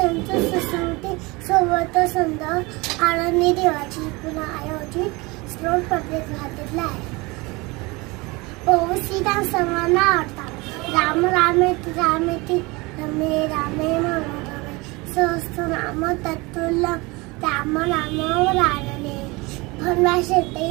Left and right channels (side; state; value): left; quieter; 24.6 dB